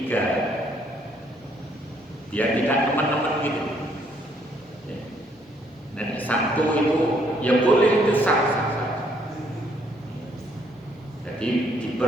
Biar tidak teman-teman gitu. Dan 1 itu ya boleh itu sah. Jadi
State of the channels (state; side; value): normal; both; correlation 0.68